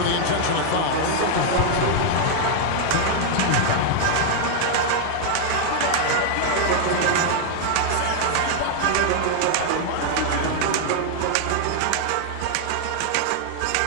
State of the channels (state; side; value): different; both; correlation 0.00